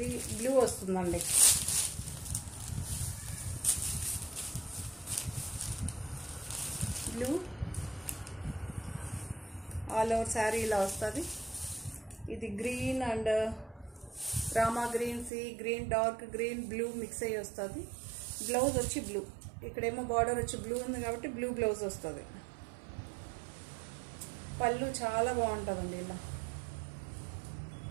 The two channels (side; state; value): left; drops out; at 15.3 s